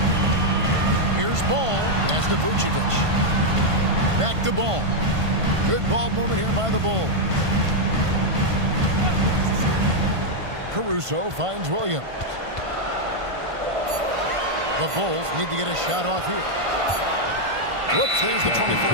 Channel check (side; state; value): left; late; 1.5 ms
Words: Here's Ball. Pass to Vucevic. Back to Ball. Good ball movement here by the Bulls. Caruso finds Williams. The Bulls need to get a shot off here. Whoops, there's the